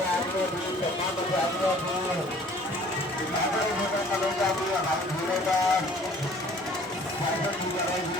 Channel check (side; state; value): both; normal; correlation 0.53